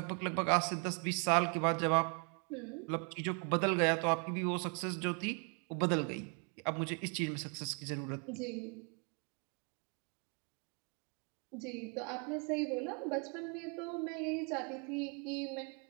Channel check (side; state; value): left; quieter; 37.1 dB